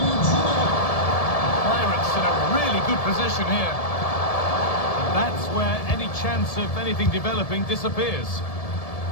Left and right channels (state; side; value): late; right; 1.7 ms